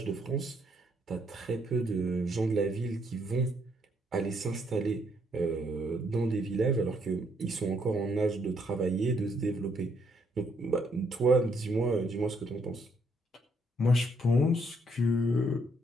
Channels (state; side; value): normal; both; correlation 0.71